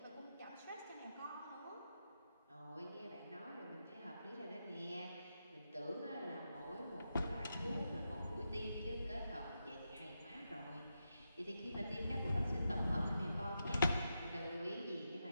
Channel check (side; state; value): both; inverted; correlation -0.87